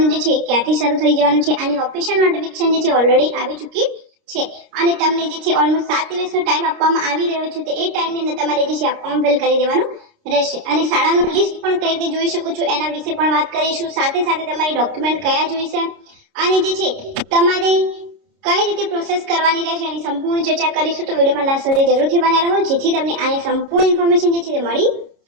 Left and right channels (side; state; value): left; late; 29 ms